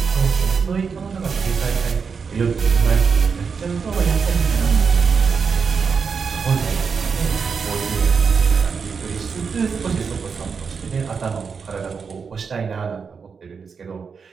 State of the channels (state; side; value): quieter; left; 5.7 dB